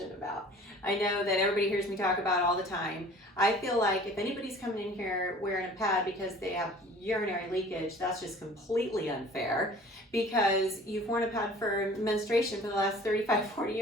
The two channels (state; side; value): normal; both; correlation 0.47